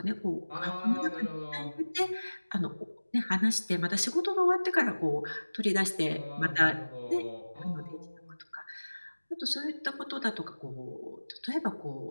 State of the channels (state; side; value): inverted; both; correlation -1.00